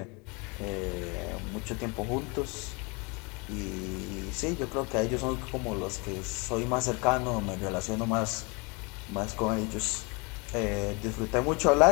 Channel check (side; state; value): right; quieter; 29.7 dB